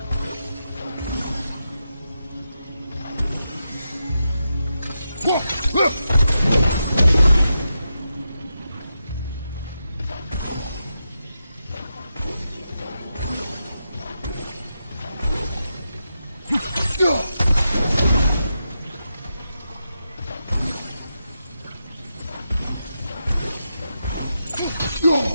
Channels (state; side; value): inverted; both; correlation -0.87